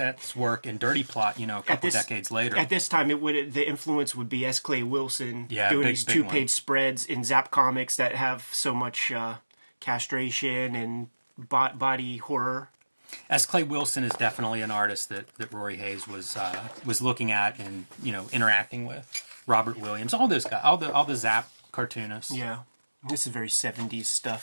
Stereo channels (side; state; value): both; inverted; correlation -1.00